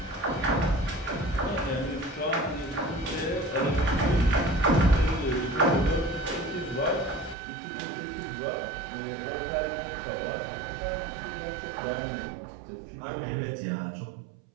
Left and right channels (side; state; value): left; drops out; at 7.4 s